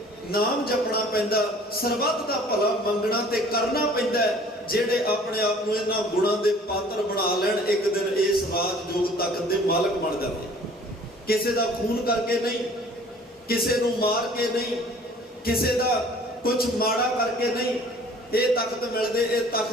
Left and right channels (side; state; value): both; normal; correlation 0.51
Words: ਨਾਮ ਜਪਣਾ ਪੈਂਦਾ, ਸਰਬੱਤ ਦਾ ਭਲਾ ਮੰਗਣਾ ਤੇ ਕਰਨਾ ਪੈਂਦਾ ਹੈ। ਜਿਹੜੇ ਆਪਣੇ ਆਪ ਨੂੰ ਇਹਨਾਂ ਗੁਣਾਂ ਦੇ ਪਾਤਰ ਬਣਾ ਲੈਣ, ਇੱਕ ਦਿਨ ਇਸ ਰਾਜ ਜੋਗ ਤਖਤ ਦੇ ਮਾਲਕ ਬਣ ਜਾਂਦੇ। ਕਿਸੇ ਦਾ ਖੂਨ ਕਰਕੇ ਨਹੀਂ, ਕਿਸੇ ਨੂੰ ਮਾਰ ਕੇ ਨਹੀਂ, ਕਿਸੇ ਦਾ ਕੁਝ ਮਾੜਾ ਕਰਕੇ ਨਹੀਂ ਇਹ ਤਖਤ ਮਿਲਦੇ। ਇਹ